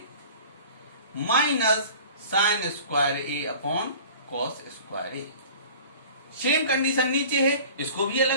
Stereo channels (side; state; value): both; inverted; correlation -0.43